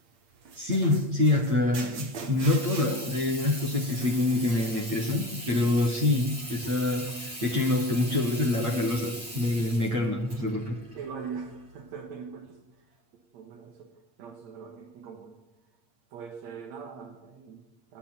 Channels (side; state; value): left; late; 8.6 ms